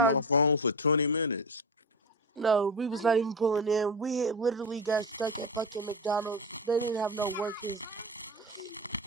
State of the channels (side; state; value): both; normal; correlation 0.22